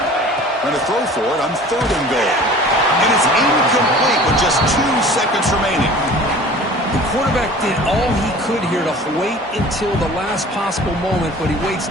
Going to throw for it on 3rd and goal. And it's incomplete with just 2 seconds remaining. The quarterback did all he could here to wait until the last possible moment, but he waits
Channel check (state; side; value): normal; both; correlation 0.44